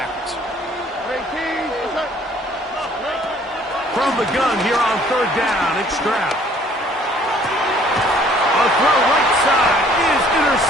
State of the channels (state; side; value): normal; both; correlation 0.58